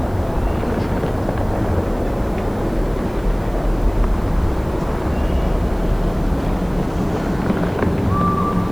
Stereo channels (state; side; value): noise; right; hiss, 27 dB below the sound